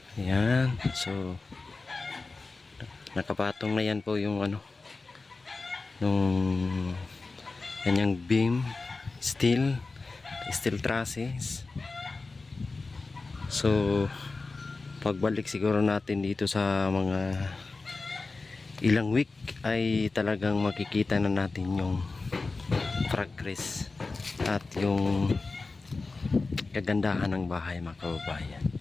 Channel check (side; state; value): right; quieter; 3.8 dB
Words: Ayan. So nakapatong na yan po yung nung kanyang beam, steel trusses. So pagbalik siguro natin dito sa mga ilang week ay talagang makikita na natin yung progress at yung kagandahan ng bahay mga kababayan.